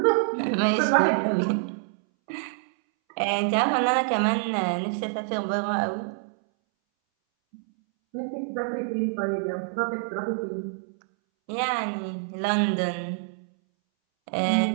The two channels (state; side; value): silent; left; 61 dB below the other